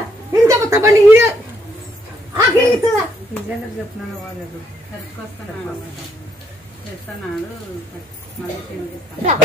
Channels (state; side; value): normal; both; correlation 0.72